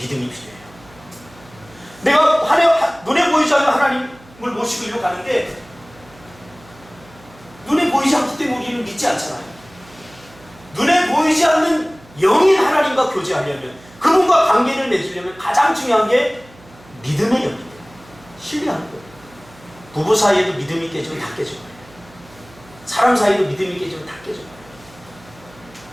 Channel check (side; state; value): right; noise; hum, 24 dB below the sound